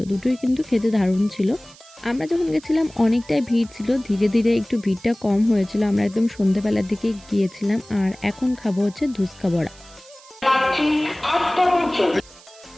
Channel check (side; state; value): right; noise; hiss, 23 dB below the sound